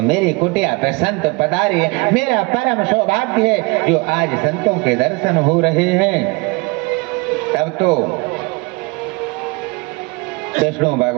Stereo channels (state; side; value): quieter; left; 26.8 dB